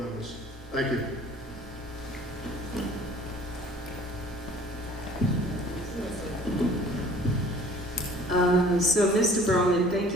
Thank you. So Mr. Broman, thank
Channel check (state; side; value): normal; both; correlation 0.51